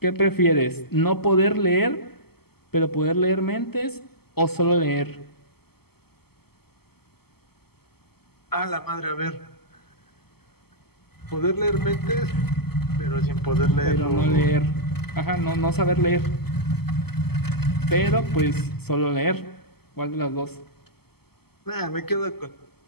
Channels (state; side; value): late; right; 0.96 ms